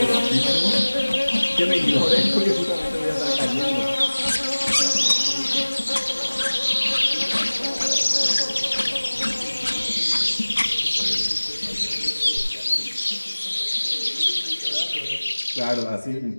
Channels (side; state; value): both; inverted; correlation -1.00